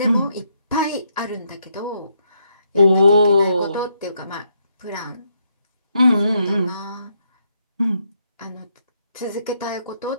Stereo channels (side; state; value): both; inverted; correlation -0.76